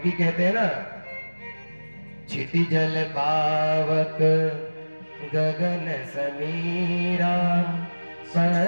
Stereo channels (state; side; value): inverted; both; correlation -1.00